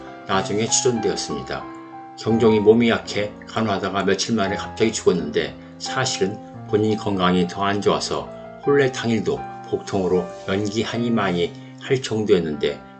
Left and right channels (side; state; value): both; identical; correlation 1.00